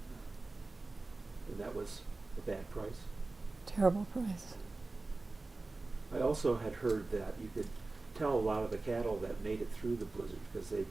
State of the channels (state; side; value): quieter; left; 3.3 dB